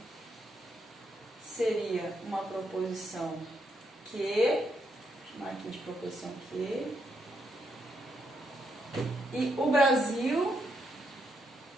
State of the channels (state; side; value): normal; both; correlation 0.78